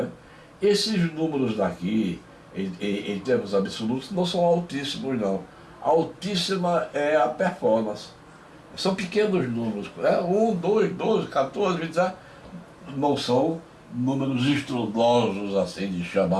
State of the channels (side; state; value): both; identical; correlation 1.00